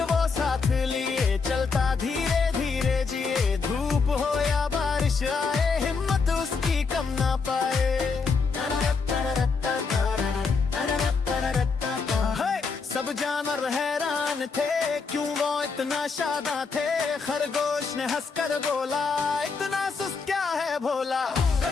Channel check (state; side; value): quieter; right; 4.9 dB